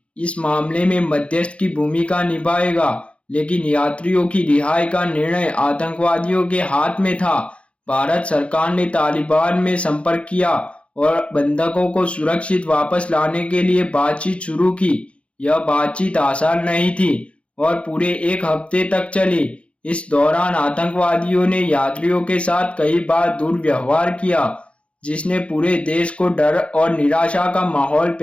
इस मामले में मध्यस्थ की भूमिका निभाएगा, लेकिन यात्रियों की रिहाई का निर्णय आतंकवादियों के हाथ में था। भारत सरकार ने तालिबान में संपर्क किया और बंधकों को सुरक्षित वापस लाने के लिए बातचीत शुरू की। यह बातचीत आसान नहीं थी और पूरे 1 हफ्ते तक चली। इस दौरान आतंकवादियों ने यात्रियों के साथ कई बार दुर्व्यवहार किया, जिसने पूरे देश को डर और निराशा का माहौल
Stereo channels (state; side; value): late; right; 0.061 ms